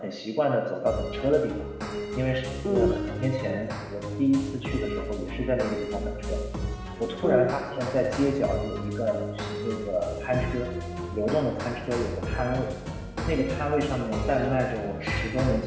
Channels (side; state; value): both; identical; correlation 1.00